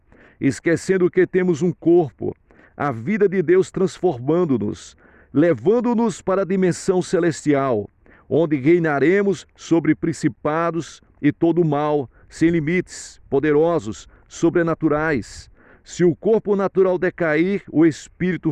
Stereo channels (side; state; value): both; identical; correlation 1.00